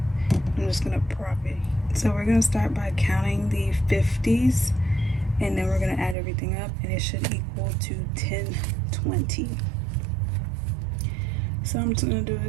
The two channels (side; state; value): left; drops out; at 6.2 s